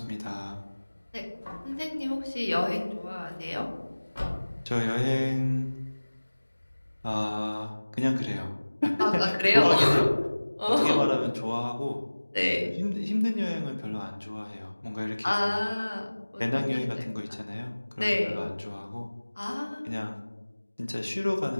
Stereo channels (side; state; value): both; inverted; correlation -1.00